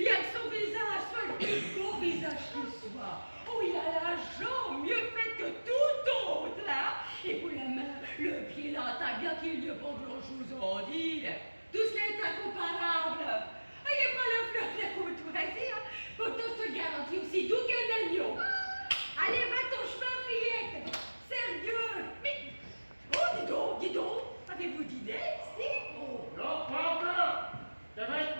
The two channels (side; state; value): both; inverted; correlation -1.00